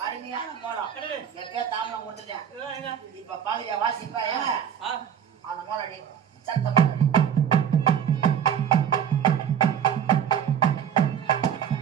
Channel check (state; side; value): quieter; left; 8.6 dB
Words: அருமையான மோளம். எப்ப தாமலம் கொடுத்துட்டேன். இப்ப பாக்குறியா வாசிப்பா? அந்த மோளடி சத்தம்